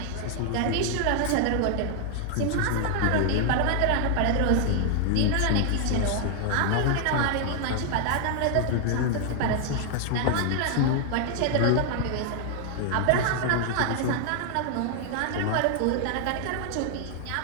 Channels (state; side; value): different; both; correlation 0.00